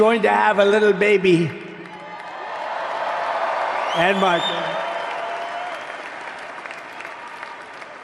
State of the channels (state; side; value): identical; both; correlation 1.00